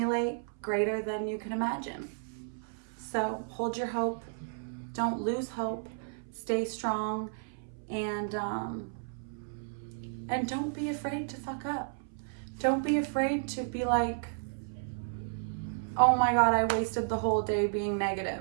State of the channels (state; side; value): silent; left; 56 dB below the other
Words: greater than you can imagine. So hold your hope. Don't lose hope. Stay strong, and don't be afraid to fuck up. Don't be afraid to be like, oh my God, I wasted the whole day being